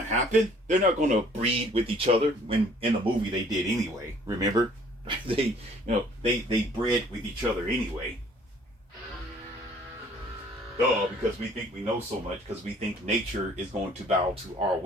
happen. They're not going to breed with each other. When in the movie they did anyway. Remember, they bred with each other anyway. Because we think we know so much, because we think nature is going to bow to our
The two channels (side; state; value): both; normal; correlation 0.57